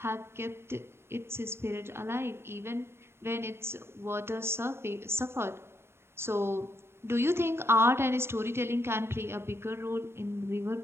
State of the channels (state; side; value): late; left; 0.12 ms